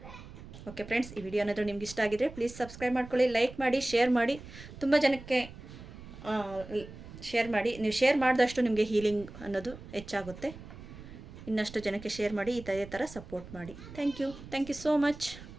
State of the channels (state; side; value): noise; right; rumble, 15 dB below the sound